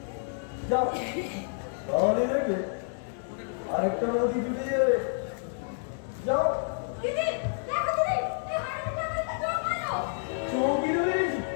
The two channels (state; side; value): silent; right; 58 dB below the other